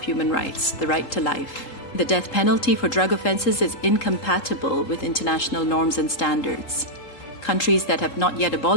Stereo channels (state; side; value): late; right; 3.8 ms